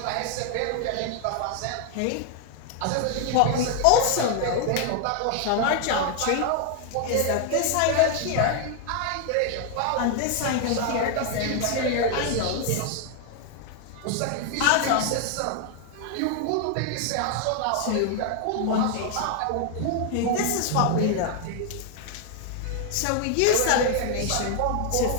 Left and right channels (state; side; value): different; both; correlation 0.00